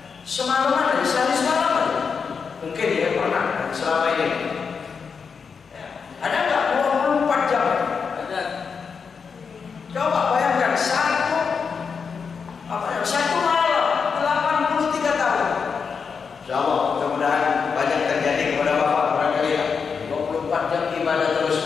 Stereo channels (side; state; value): right; quieter; 5.8 dB